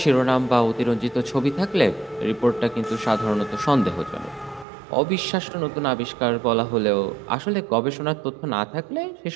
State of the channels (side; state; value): left; drops out; at 4.7 s